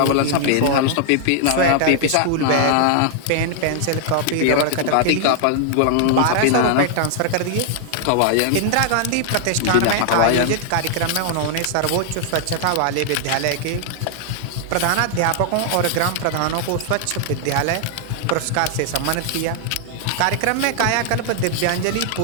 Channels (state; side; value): different; both; correlation 0.00